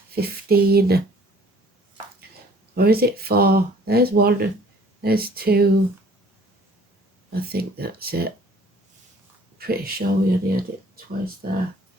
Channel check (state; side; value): normal; both; correlation 0.54